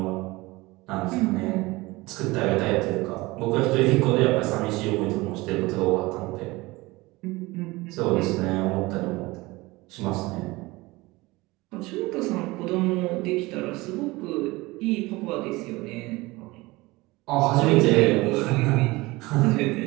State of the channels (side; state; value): left; quieter; 21.5 dB